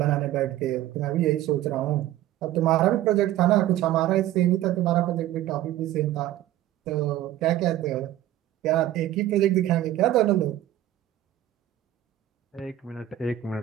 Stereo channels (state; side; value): quieter; left; 13.5 dB